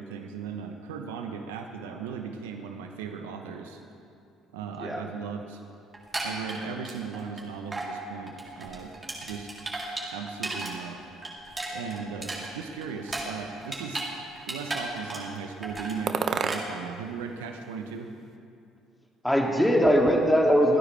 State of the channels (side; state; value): both; normal; correlation 0.77